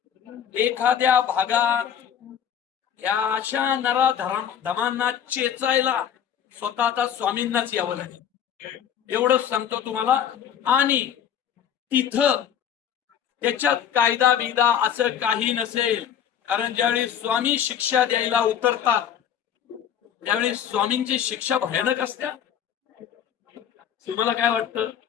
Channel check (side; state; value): right; quieter; 9.2 dB